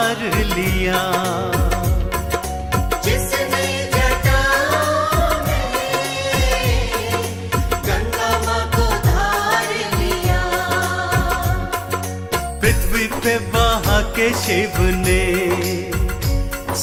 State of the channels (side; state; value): both; identical; correlation 1.00